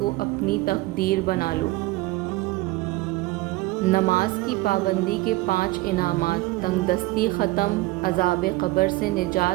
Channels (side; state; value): left; quieter; 19.8 dB